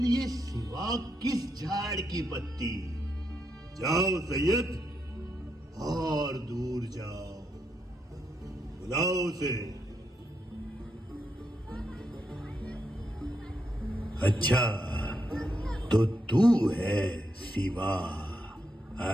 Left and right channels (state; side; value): normal; both; correlation 0.81